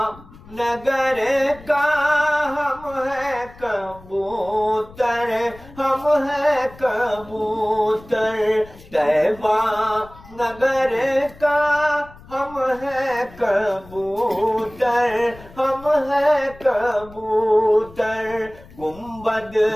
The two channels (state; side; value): noise; left; rumble, 21 dB below the sound